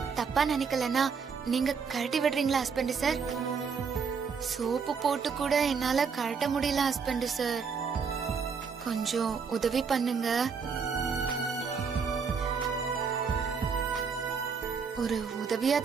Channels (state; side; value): quieter; left; 5.8 dB